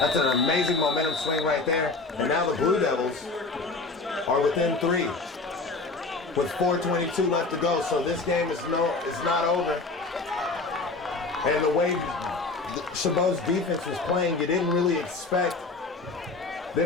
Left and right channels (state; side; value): quieter; right; 3.7 dB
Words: momentum swing right there. And now the Blue Devils are within 3 with 4:22 left to go. So this game is not over. And the way CHABOT's defense was playing, you didn't really expect